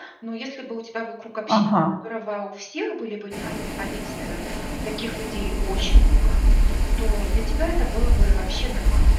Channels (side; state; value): both; identical; correlation 1.00